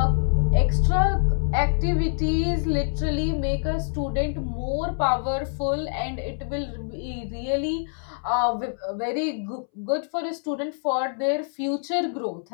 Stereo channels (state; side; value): silent; right; 62 dB below the other